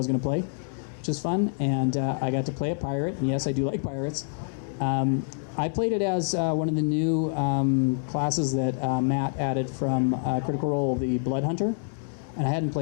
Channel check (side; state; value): right; silent; digital silence